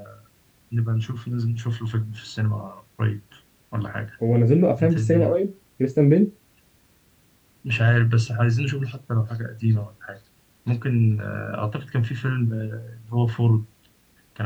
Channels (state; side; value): identical; both; correlation 1.00